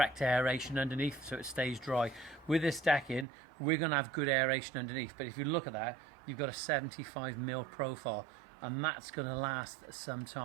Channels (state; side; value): drops out; left; at 3.2 s